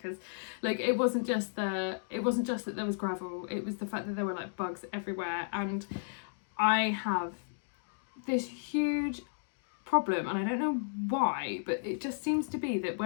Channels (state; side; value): silent; right; digital silence